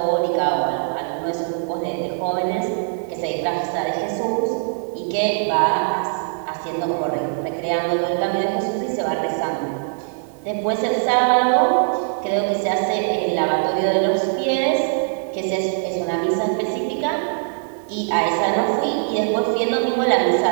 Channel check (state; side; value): silent; left; 65 dB below the other